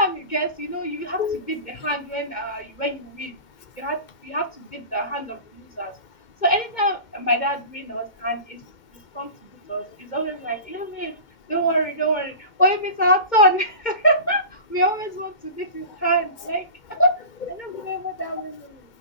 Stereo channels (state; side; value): late; right; 2.2 ms